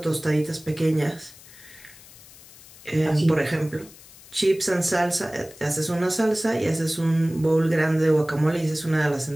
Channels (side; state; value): left; noise; hiss, 21 dB below the sound